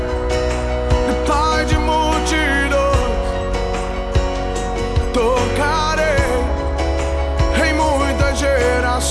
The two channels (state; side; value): identical; both; correlation 1.00